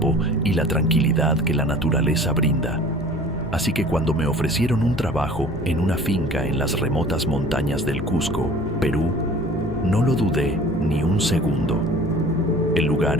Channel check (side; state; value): both; normal; correlation 0.46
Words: y la tranquilidad que la naturaleza brinda. Así que cuando me ofrecieron un trabajo en una finca en las remotas montañas del Cusco, Perú, no lo dudé ni un segundo. El